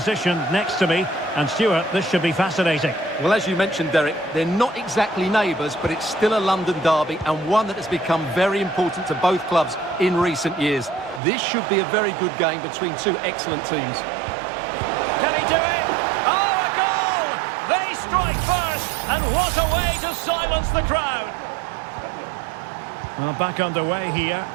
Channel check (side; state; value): left; drops out; at 11.2 s